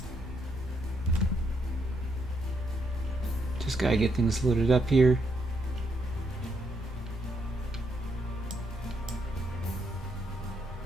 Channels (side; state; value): both; normal; correlation 0.77